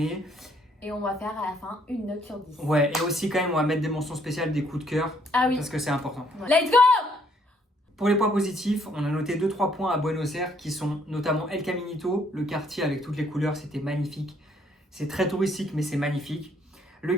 Et on va faire à la fin une note sur 10. Ouais, et aussi quand même, on va mettre des mentions spéciales, des coups de cœur. Ah oui. Parce que c'est important. Ouais. Let's go! Pour les points positifs, on a noté 2-3 points à Buenos Aires qui sont notamment El Caminito, le quartier avec toutes les couleurs, c'était magnifique. C'est très touristique, mais c'est magnifique. Le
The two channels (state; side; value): normal; both; correlation 0.67